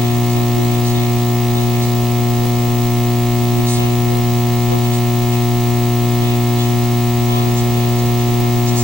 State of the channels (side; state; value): both; normal; correlation 0.84